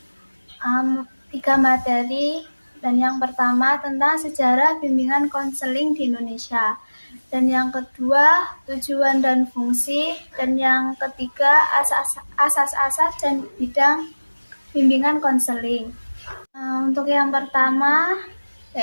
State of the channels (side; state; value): both; inverted; correlation -1.00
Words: 3 materi. Dan yang pertama tentang sejarah bimbingan konseling di Indonesia. Dan yang kedua tujuan dan fungsi. Dan yang ketiga asas-asas dan bidang bimbingan konseling. Untuk yang pertama